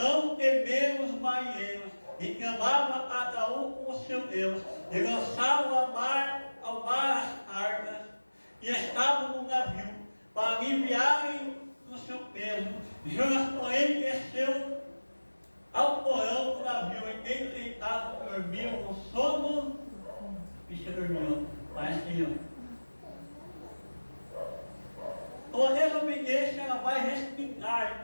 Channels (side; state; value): both; inverted; correlation -1.00